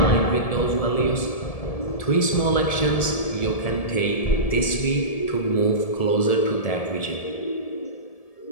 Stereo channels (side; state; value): right; late; 1.7 ms